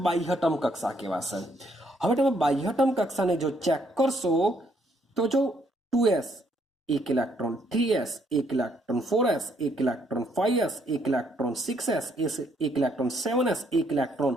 બાહ્યતમ કક્ષા કહેવાશે. હવે તમે બાહ્યતમ કક્ષાને જો ચેક કરશો તો જો 2s 1 electron, 3s 1 electron, 4s 1 electron, 5s 1 electron, 6s 1 electron, 7s 1 electron.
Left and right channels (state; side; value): normal; both; correlation 0.70